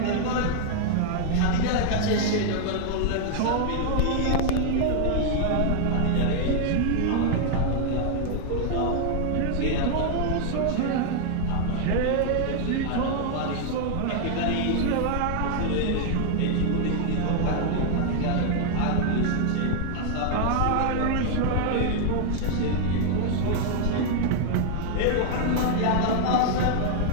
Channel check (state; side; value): different; both; correlation 0.00